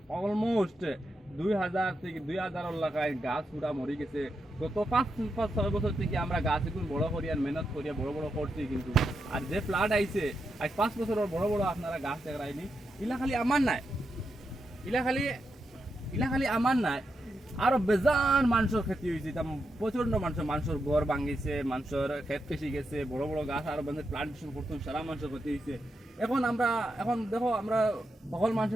অলমোস্ট 2000 থেকে 2000 এলাকায় গাছ পুরা মরে গেছে। গত 5-6 বছর থেকে আমরা গাছ এখন বড় করিয়া মেহনত করিয়া বড় বড় করছি, কিন্তু আর যে ফ্লাড আইছে আজ 5 বছরের বড় বড় আপনারা গাছ দেখায়নি। ইলা খালি আমার নাই, ইলা খালি আমার নাই, আরো বেজান মানুষের ক্ষতি হয়েছে। প্রচন্ড মানুষের ঘর ভাঙিছে, মানুষের ক্ষেত পেশি গেছে, বড় বড় গাছ আরো প্লান্টেশন করতাম, সারা মানুষের ক্ষতি হয়েছে। এখন দেখো আমরা সকল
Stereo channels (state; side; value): normal; both; correlation 0.85